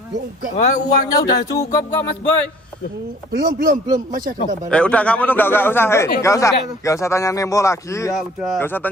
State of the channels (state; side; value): normal; both; correlation 0.53